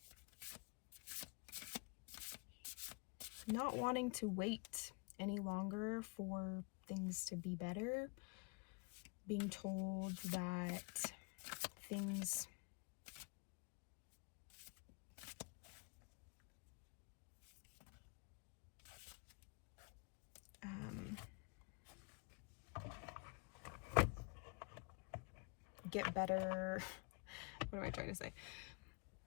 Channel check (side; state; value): right; quieter; 32.4 dB